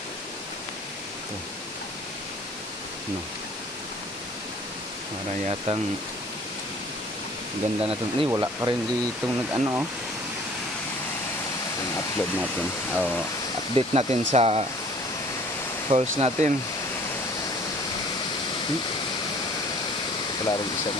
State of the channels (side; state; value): both; normal; correlation 0.53